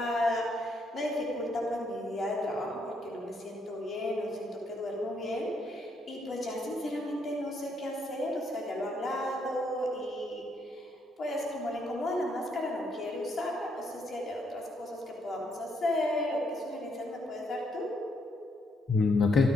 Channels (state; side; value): normal; both; correlation 0.74